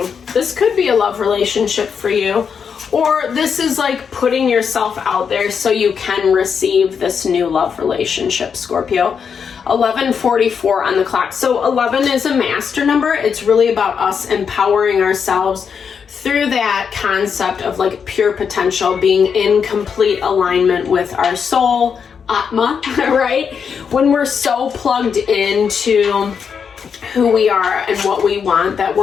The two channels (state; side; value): quieter; right; 6.6 dB